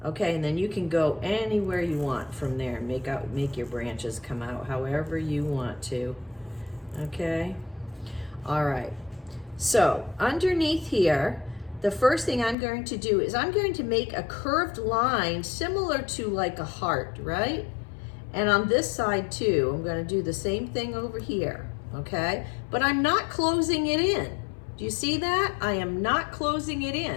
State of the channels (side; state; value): right; drops out; at 12.6 s